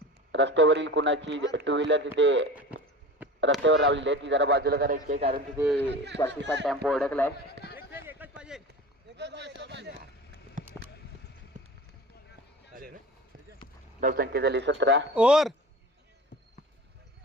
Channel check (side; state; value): both; normal; correlation 0.36